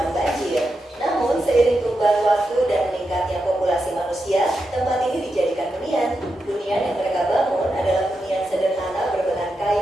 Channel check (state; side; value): normal; both; correlation 0.87